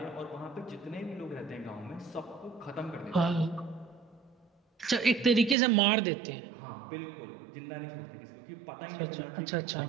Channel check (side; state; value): left; drops out; at 5.6 s